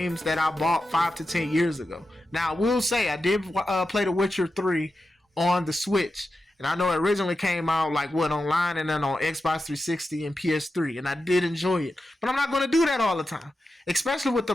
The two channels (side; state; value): both; normal; correlation 0.90